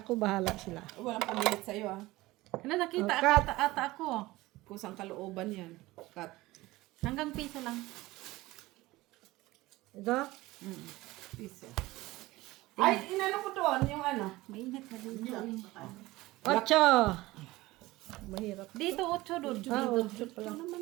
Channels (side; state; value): left; quieter; 19.1 dB